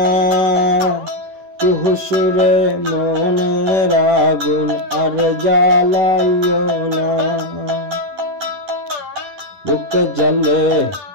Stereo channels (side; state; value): left; late; 10 ms